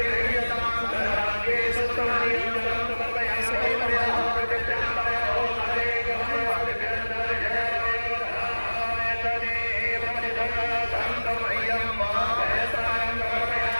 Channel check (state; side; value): inverted; both; correlation -1.00